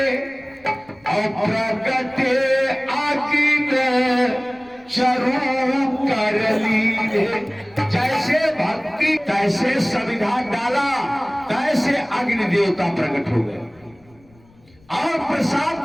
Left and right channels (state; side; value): noise; left; rumble, 29 dB below the sound